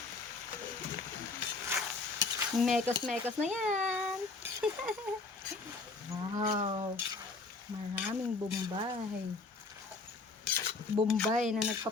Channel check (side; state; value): right; quieter; 3.8 dB